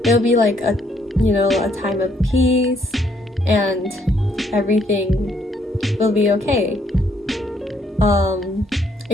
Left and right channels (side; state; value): both; normal; correlation 0.69